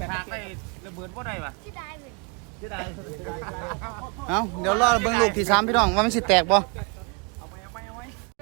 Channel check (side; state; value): left; quieter; 32.9 dB